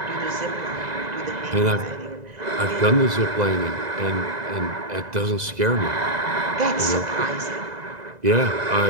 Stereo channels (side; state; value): left; late; 2.0 ms